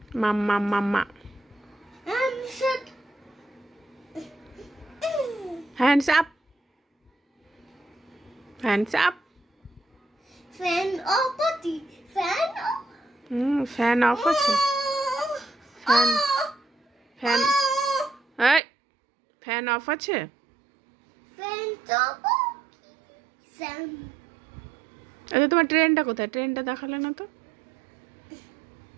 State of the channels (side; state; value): left; drops out; at 18.6 s